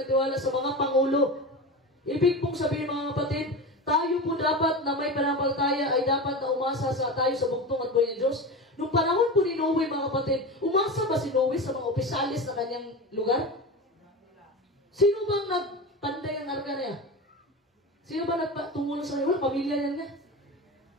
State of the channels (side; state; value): both; normal; correlation 0.26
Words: tiwala sa mga pangulo. Ibig pong sabihin mga kapatid, tayo po dapat na may pananampalataya ay dapat na umasa tayo sa bugtong at buhay ng Diyos. Nung panahon po ni Noe mga kapatid, umasa ba si Noe sa mga opisyalis na kanyang lugar? Sino bang nagpanday ang arka na yan? Sino ba tumulong sa kanya? Wala, pamilya niya nga.